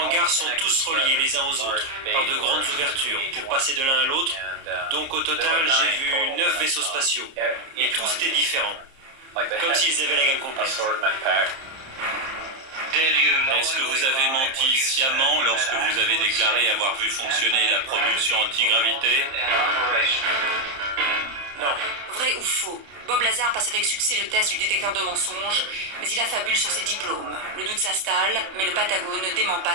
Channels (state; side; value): late; left; 30 ms